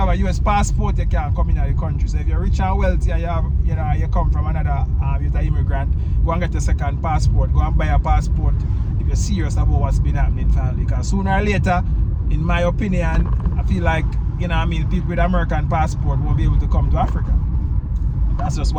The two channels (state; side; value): identical; both; correlation 1.00